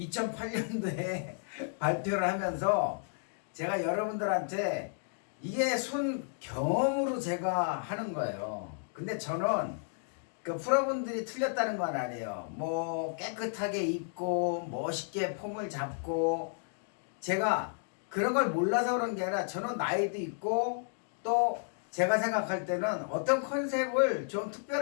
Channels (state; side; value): silent; right; digital silence